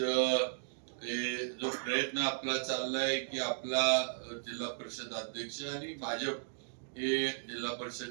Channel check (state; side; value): silent; left; digital silence